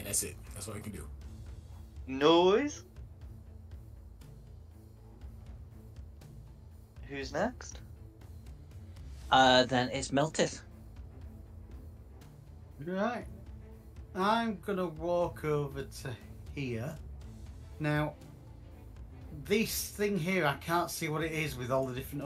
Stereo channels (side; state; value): both; identical; correlation 1.00